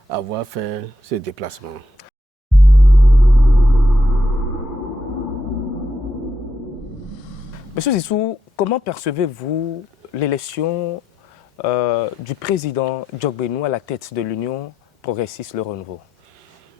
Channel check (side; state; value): both; normal; correlation 0.81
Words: avoir fait ce déplacement. Monsieur Zinsou, comment percevez-vous l'élection du président Djokbenou à la tête de l'Union progressiste Le Renouveau?